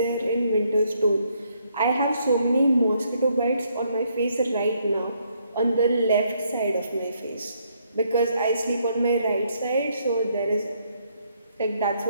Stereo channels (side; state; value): both; inverted; correlation -0.72